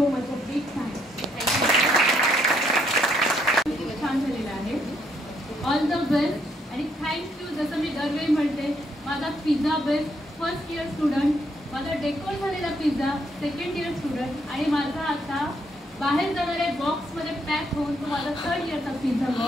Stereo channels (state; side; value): normal; both; correlation 0.72